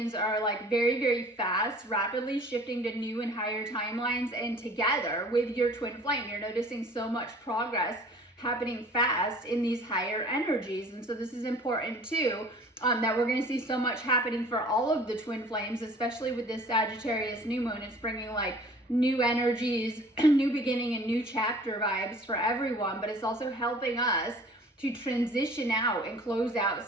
are like very, very fast, rapidly shifting to new and higher timelines. And together with your twin flame, you're noticing so much progress happening fast in these higher energies. And so this is important too, that we're going to see so much happening for all of the twin flames, especially with this Sagittarius new moon. It's bringing like new energies, new beginning and new chapter vibes for everyone, but it's also helping us to transition out and close out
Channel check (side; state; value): both; normal; correlation 0.48